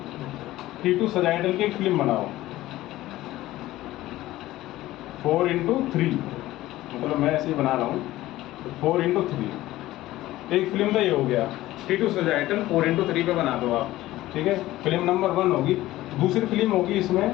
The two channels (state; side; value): quieter; right; 16.2 dB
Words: T2 sagittal की एक फिल्म बनाओ 4x3, मतलब मैं ऐसे ही बना रहा हूँ, तो 4x3 एक फिल्म तो ये हो गया। T2 सजाइटल 4x3 पे बना दो आप, ठीक है। फिल्म नंबर 1 होगी। दूसरी फिल्म होगी